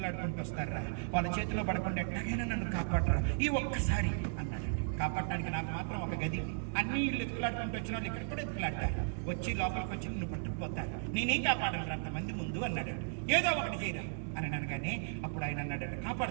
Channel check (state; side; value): silent; left; digital silence